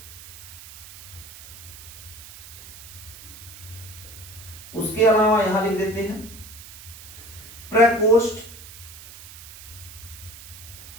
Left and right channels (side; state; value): right; noise; hiss, 16 dB below the sound